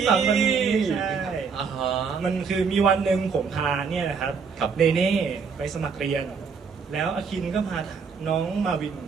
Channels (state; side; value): quieter; left; 5.6 dB